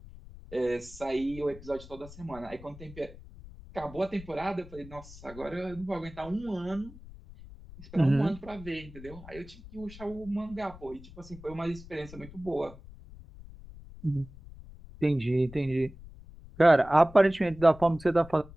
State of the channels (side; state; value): left; noise; rumble, 17 dB below the sound